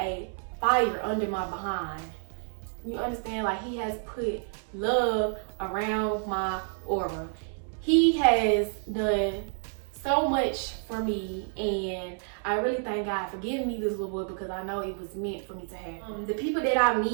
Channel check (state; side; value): silent; left; 57 dB below the other